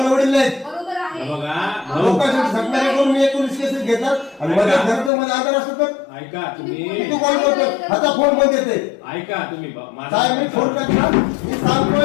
वडील नाहीत. लोकांसाठी सत्कार करून मी 19 केसेस घेतात आणि माझ्या घरात मध्ये आजार असतो तर ऐका तुम्ही तू कॉल करतो आता फोन बंद येते. ऐका तुम्ही साहेब मी फोन टाकला मी सांगतोय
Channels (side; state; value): right; drops out; at 5.1 s